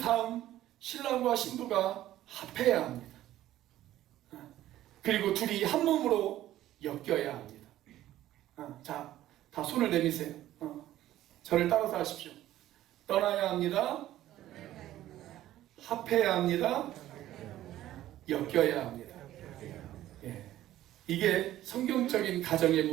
신랑과 신부가 합해야 합니다. 그리고 둘이 한 몸으로 엮여야 합니다. 자, 다 손을 내미세요. 저를 따라서 하십시오. 떠나야 합니다. 합해야 합니다. 엮여야 합니다. 이게 성경적인 가정의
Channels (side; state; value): left; quieter; 13.8 dB